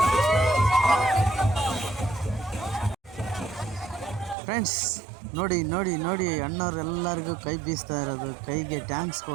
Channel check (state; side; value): drops out; left; at 4.4 s